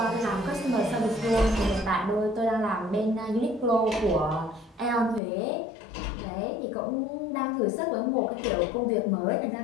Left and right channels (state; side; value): drops out; right; at 5.2 s